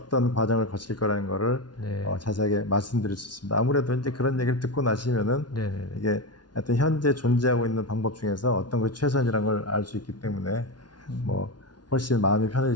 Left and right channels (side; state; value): right; late; 0.70 ms